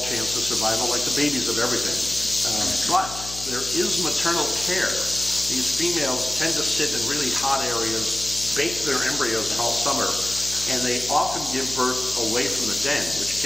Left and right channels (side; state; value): left; noise; hum, 13 dB below the sound